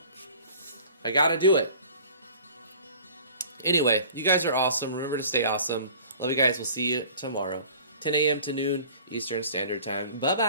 I gotta do it. Anyway, you guys are awesome. Remember to stay awesome. Love you guys. We'll see you tomorrow. 10 a.m. to noon Eastern Standard Time.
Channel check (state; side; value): inverted; both; correlation -0.46